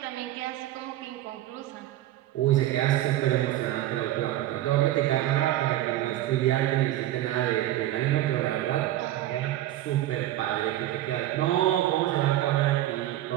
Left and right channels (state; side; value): quieter; left; 14.1 dB